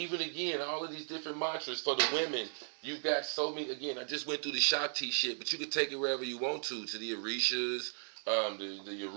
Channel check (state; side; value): silent; left; digital silence